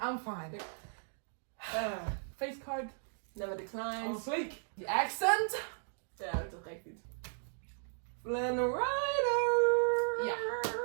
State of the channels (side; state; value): left; silent; digital silence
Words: fine. Face card. Never I'm declines. sleek. The accent. Ja, dat is toch echt iets. Flynn Rider. Yeah.